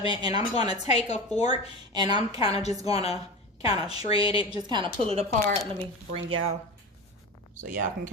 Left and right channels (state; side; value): normal; both; correlation 0.27